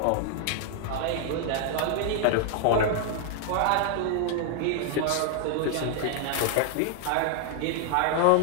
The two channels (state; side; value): different; both; correlation 0.00